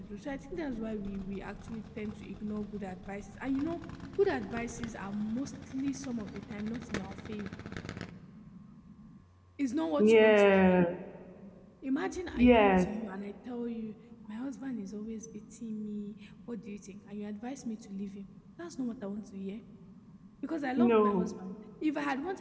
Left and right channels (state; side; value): identical; both; correlation 1.00